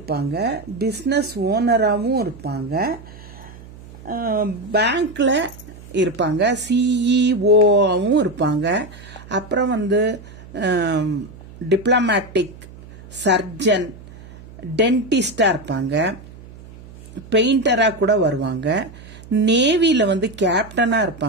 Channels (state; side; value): noise; right; hum, 19 dB below the sound